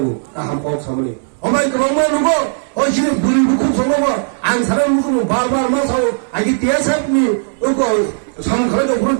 나한 법 사모니. 어마이 그런 말 누구? 어시는 물이 묵고 성공어 안 사람 묵고 바바 마사오. 아기 대사님이 어거 상가라도 그런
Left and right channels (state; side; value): silent; left; digital silence